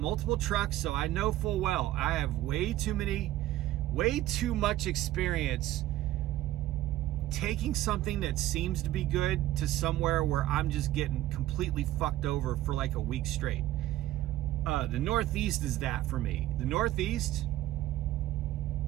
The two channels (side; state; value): left; quieter; 14.8 dB